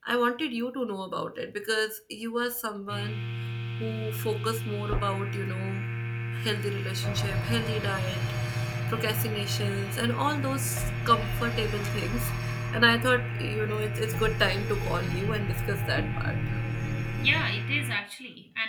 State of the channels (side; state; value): both; identical; correlation 1.00